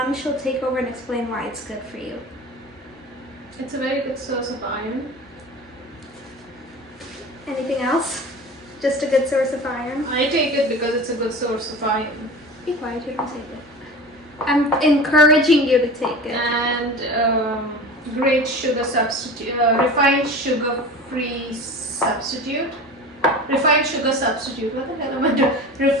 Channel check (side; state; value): both; normal; correlation 0.35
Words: she'll take over and explain why it's good for you. It's a very good source of iron. Anything else? Just a good source of iron? I take it because it's a good source of iron. Be quiet, you don't take it. I'm encouraging you to take it. And great sugar substitute, refined sugar-free substitute. Refined sugar substitute. What the hell am I doing?